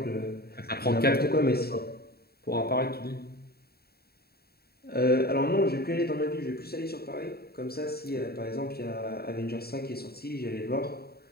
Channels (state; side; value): late; right; 0.45 ms